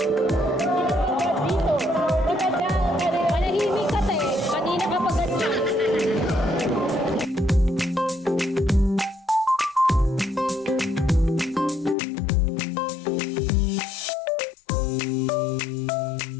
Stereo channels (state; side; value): drops out; right; at 12.0 s